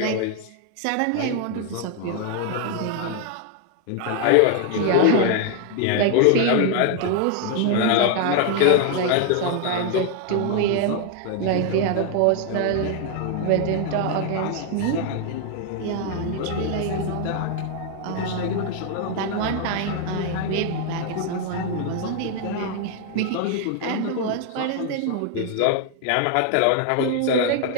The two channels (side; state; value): both; different; correlation 0.00